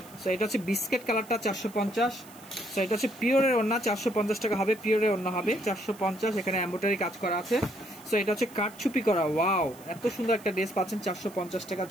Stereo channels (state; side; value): noise; right; hiss, 22 dB below the sound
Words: সো এটা হচ্ছে বিস্কেট কালারটা 450। সো এটা হচ্ছে পিওরের ওড়না, 450 টাকা হবে, পিওরের ওড়না হবে 450, এখানে এমব্রয়ডারি কাজ করা আছে। সো এটা হচ্ছে কাটছুপি করা, ওয়াও এত সুন্দর একটা ড্রেস পাচ্ছেন 450 টাকা,